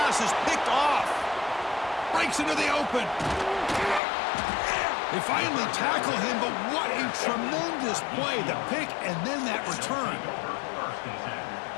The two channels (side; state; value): right; drops out; at 4.0 s